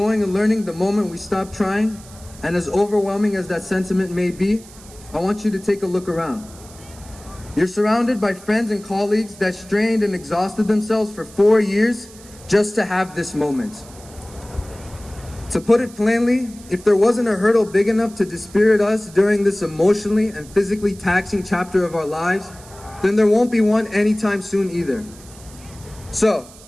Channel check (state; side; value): noise; right; hiss, 21 dB below the sound